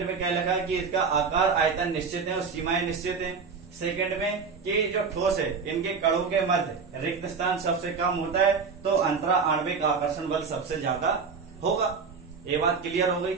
में क्या लगा कि इसका आकार आयतन निश्चित है और सीमाएं निश्चित है। सेकंड में कि जो ठोस है इनके कणों के मध्य रिक्त स्थान सबसे कम होता है तो अंतरा आणविक आकर्षण बल सबसे ज्यादा होगा। ये बात क्लियर हो गई,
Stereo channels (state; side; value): quieter; left; 5.3 dB